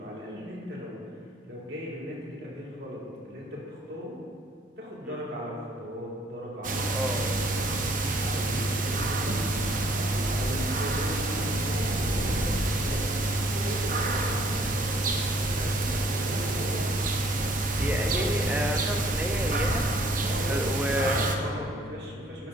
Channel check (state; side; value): normal; both; correlation 0.61